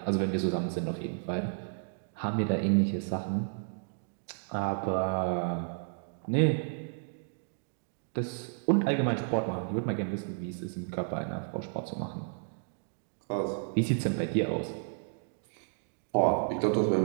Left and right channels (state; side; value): silent; left; digital silence